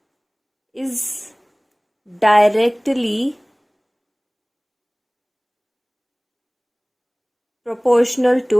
is directly proportional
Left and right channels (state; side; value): identical; both; correlation 1.00